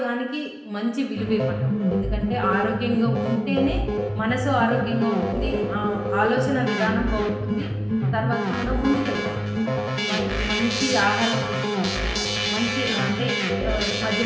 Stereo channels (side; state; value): both; identical; correlation 1.00